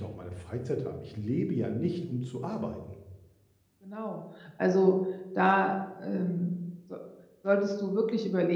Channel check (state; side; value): identical; both; correlation 1.00